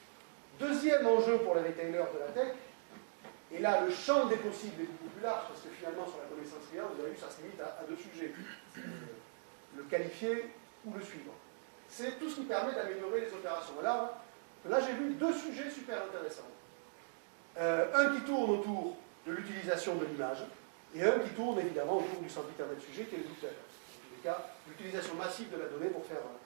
Deuxième enjeu pour les retailers de la tech, et là le champ des possibles est beaucoup plus large, parce que finalement sur la connaissance client, vous avez vu, ça se limite à deux sujets. Le qualifier ou le suivre. C'est tout ce qui permet d'améliorer les opérations. Là j'ai vu deux sujets super intéressants. Un qui tourne autour de l'utilisation de l'image, et un qui tourne évidemment autour du sempiternel sujet qui est le but. Dans tous les cas, l'utilisation massive de la donnée pour faire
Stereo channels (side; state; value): left; silent; digital silence